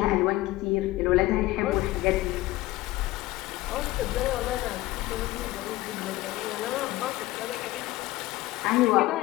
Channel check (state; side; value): quieter; right; 17.9 dB